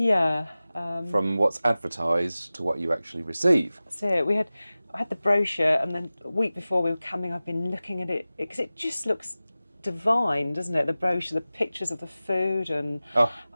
From what's advertised to what you actually receive. That's it. I had the brochure, and then a week before we were coming, I've been looking at it because it just looks divine, doesn't it? The brochure, the pictures of the food, and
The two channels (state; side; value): inverted; both; correlation -0.97